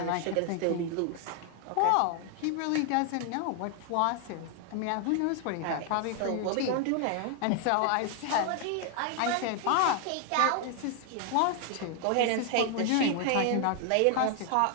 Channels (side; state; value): both; different; correlation 0.00